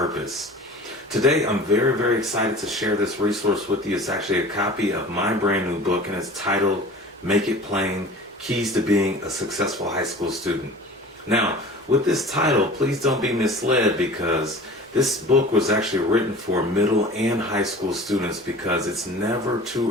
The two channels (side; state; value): both; normal; correlation 0.41